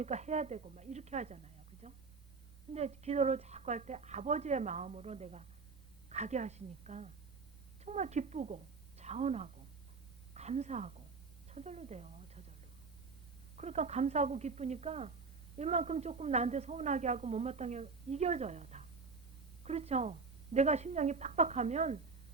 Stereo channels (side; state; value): left; quieter; 4.6 dB